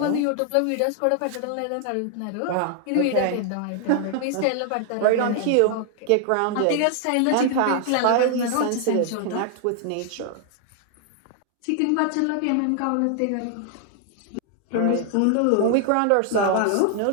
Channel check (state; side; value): different; both; correlation 0.00